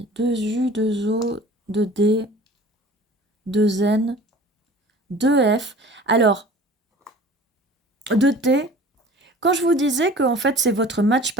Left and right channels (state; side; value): normal; both; correlation 0.44